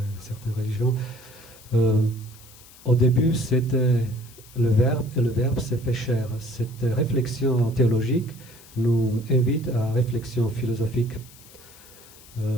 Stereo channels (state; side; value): noise; left; hiss, 22 dB below the sound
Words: certaines religions, au début c'était le Verbe, et le Verbe s'est fait chair. Cette réflexion théologique nous invite à réflexion philosophique,